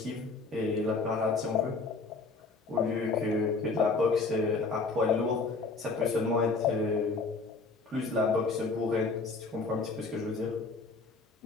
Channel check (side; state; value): right; quieter; 4.0 dB